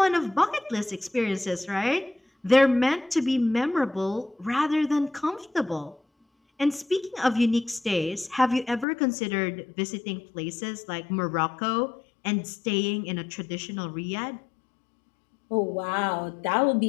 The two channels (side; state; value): right; drops out; at 8.8 s